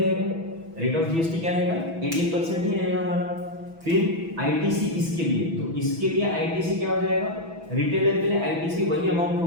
रेट ऑफ जीएसटी क्या रहेगा 18% ही रहेगा हमारा। फिर आईटीसी इसके लिए, तो इसके लिए आईटीसी क्या हो जाएगा रिटेलर के लिए आईटीसी वही अमाउंट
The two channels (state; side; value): late; left; 6.1 ms